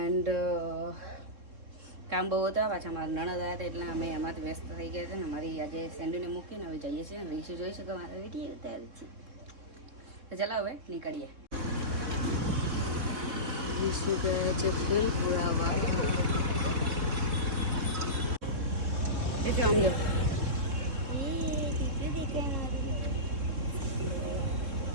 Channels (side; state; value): left; late; 3.7 ms